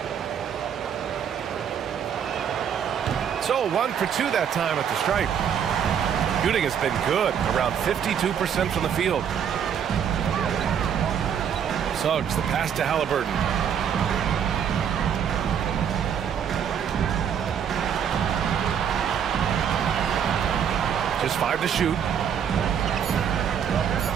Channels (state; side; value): quieter; left; 8.2 dB